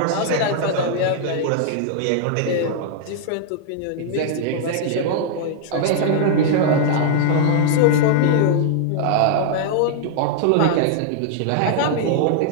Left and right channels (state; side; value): different; both; correlation -0.01